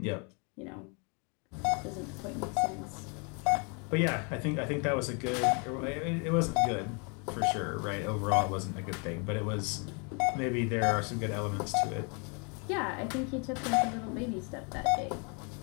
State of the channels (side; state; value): right; quieter; 35.1 dB